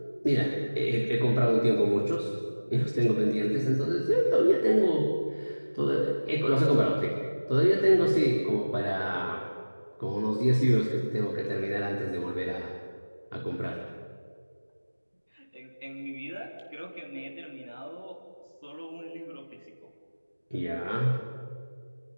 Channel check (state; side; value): inverted; both; correlation -1.00